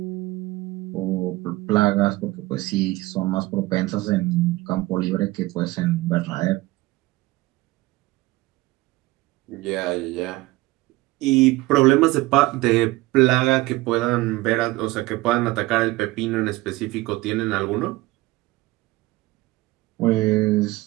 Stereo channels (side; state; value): left; quieter; 19.6 dB